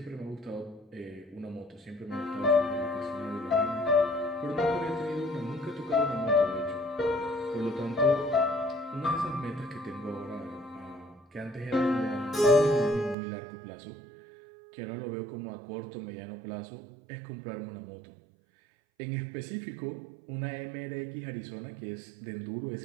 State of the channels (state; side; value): drops out; left; at 13.2 s